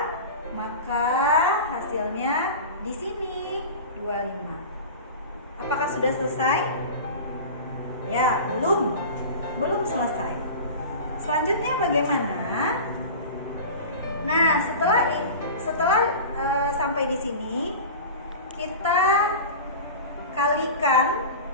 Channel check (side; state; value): both; inverted; correlation -0.33